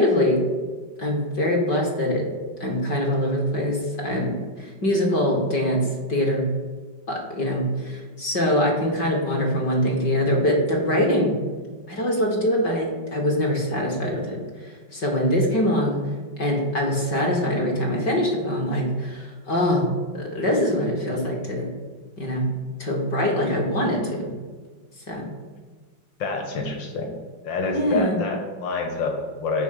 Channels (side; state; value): right; late; 5.2 ms